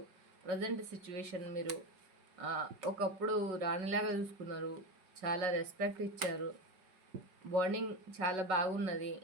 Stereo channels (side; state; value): left; late; 5.4 ms